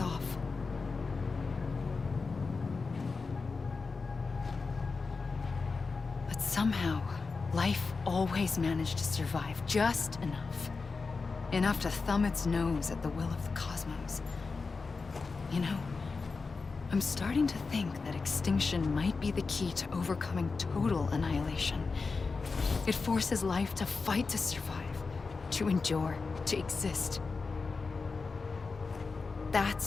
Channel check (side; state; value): right; quieter; 4.4 dB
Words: But somehow, life always managed to survive just enough. Enough to thumb its nose at the will of the cosmos. You know, I'm starting to think that extinction might be the key to overcoming total annihilation. It forces life to fight to survive, to endure, to exist.